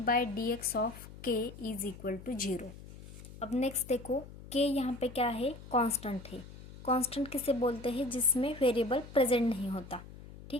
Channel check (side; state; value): left; noise; hum, 16 dB below the sound